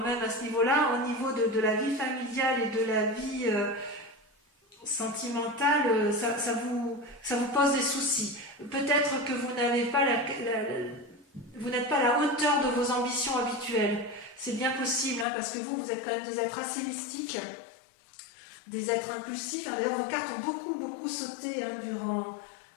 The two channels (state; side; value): drops out; right; at 15.2 s